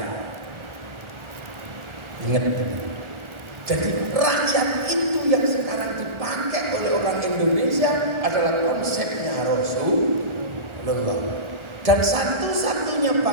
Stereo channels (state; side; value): late; left; 1.4 ms